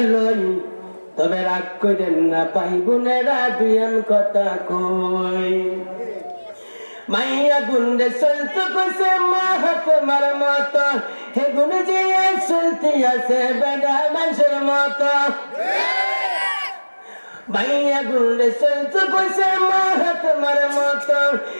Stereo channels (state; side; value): inverted; both; correlation -1.00